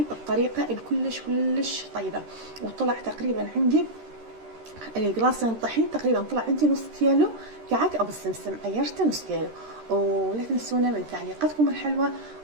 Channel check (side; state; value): left; late; 13 ms